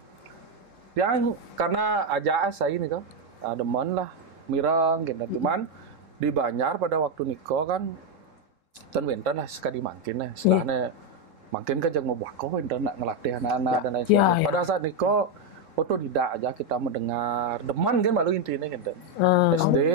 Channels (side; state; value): left; late; 3.7 ms